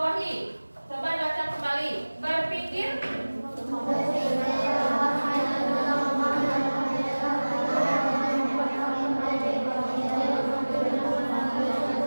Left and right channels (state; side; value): inverted; both; correlation -1.00